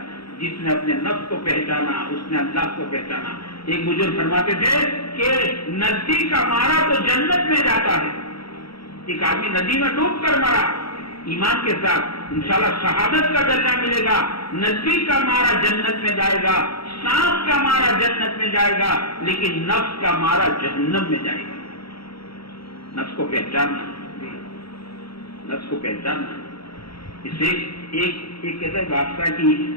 جس نے اپنے نفس کو پہچانا اس نے اللہ کو پہچانا۔ ایک بزرگ فرماتے تھے کہ ندی کا مارا تو جنت میں جاتا ہے، ایک آدمی ندی میں ڈوب کر مرا ایمان کے ساتھ، انشاءاللہ شہادت کا درجہ ملے گا، ندی کا مارا جنت میں جائے گا، سانپ کا مارا جنت میں جائے گا، لیکن نفس کا مارا جہنم میں جائے گا۔ نفس کو پہچاننا، نفس کو پہچاننا۔ اسے ایک کہتے ہیں بادشاہ کی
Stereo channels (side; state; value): right; late; 0.75 ms